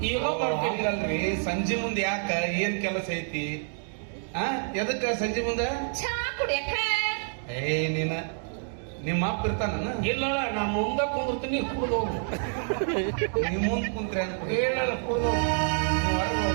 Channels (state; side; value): silent; left; 59 dB below the other